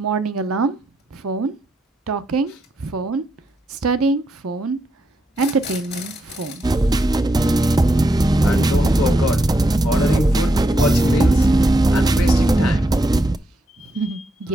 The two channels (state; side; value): normal; both; correlation 0.81